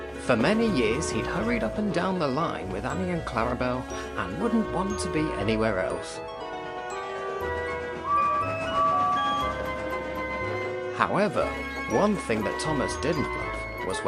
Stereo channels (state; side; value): identical; both; correlation 1.00